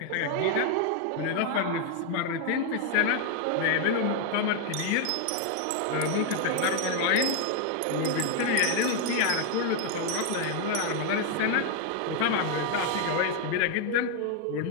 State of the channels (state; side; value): different; both; correlation 0.00